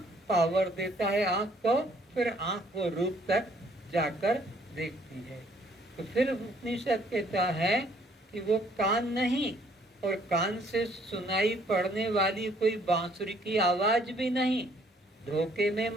पावर देता है आंख को, फिर आंख वो रूप तक जाकर देखती है। तो फिर उपनिषद कहता है कि वो कान नहीं, और कान से सुनाई पड़ने वाली कोई बांसुरी की आवाज भी नहीं। धोखे में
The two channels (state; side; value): normal; both; correlation 0.63